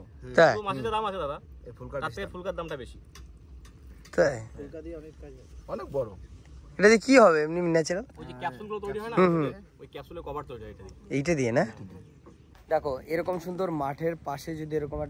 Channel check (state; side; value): identical; both; correlation 1.00